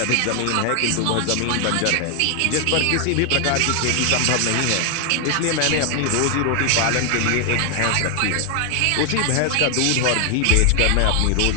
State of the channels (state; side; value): different; both; correlation 0.00